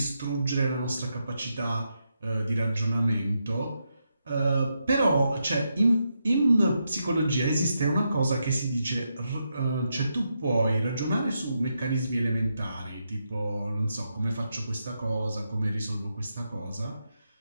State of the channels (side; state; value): both; inverted; correlation -0.84